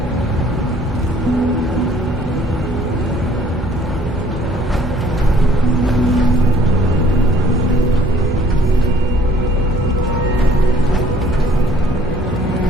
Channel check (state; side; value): normal; both; correlation 0.58